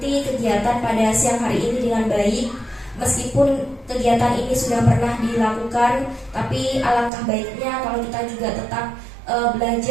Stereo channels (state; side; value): drops out; left; at 7.1 s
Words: kegiatan pada siang hari ini dengan baik. Meskipun kegiatan ini sudah pernah dilakukan, tapi alangkah baiknya kalau kita juga tetap